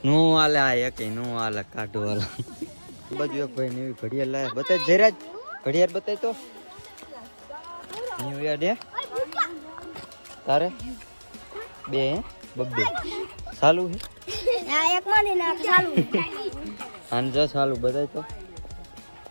નું હાલે આ એક નું હાલે કાઢો હાલ. બાજુ એક ભાઈ નવી ઘડિયાળ લાયા બતાય જયરાજ ઘડિયાળ બતાય તો ન્યુ યર ડે તારે બે બબ્બે ચાલુ હે એક મને ના ચાલુ આન જો ચાલુ બતાય તો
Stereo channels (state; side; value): inverted; both; correlation -1.00